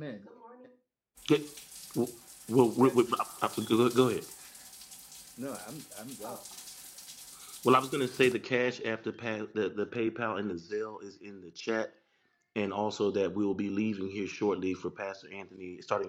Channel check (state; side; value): identical; both; correlation 1.00